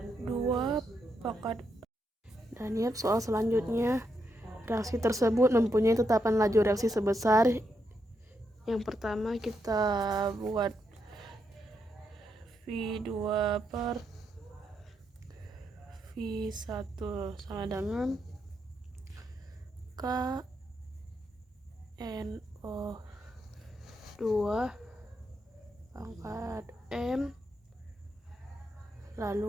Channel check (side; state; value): both; normal; correlation 0.81